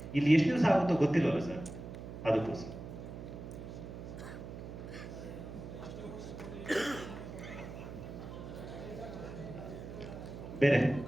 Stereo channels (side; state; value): right; noise; hum, 10 dB below the sound